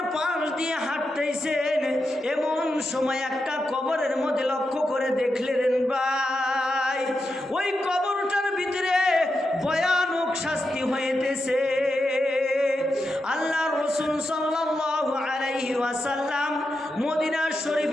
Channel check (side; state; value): both; normal; correlation 0.87